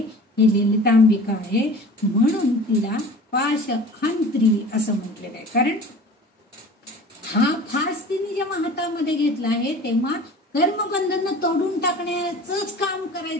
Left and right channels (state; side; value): normal; both; correlation 0.41